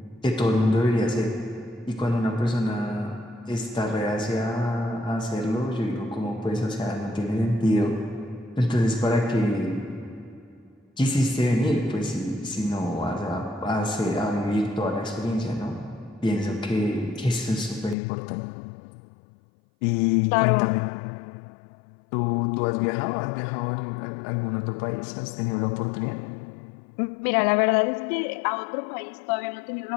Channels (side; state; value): right; drops out; at 17.9 s